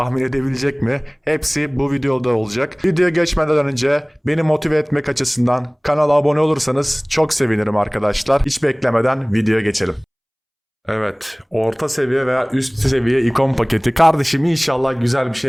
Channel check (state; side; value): identical; both; correlation 1.00